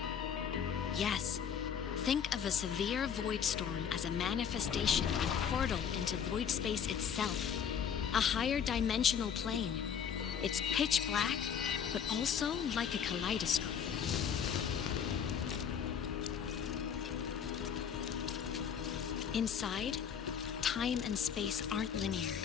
Yes. Think of a severe void storm as a manifestation and portal into void space itself. A higher dimensional plane. It's pitch black, but also like a kaleidoscope. Inside, time and space aren't linear.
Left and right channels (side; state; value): right; quieter; 7.7 dB